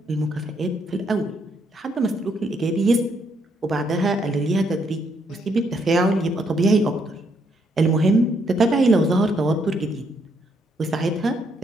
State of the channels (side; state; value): both; normal; correlation 0.73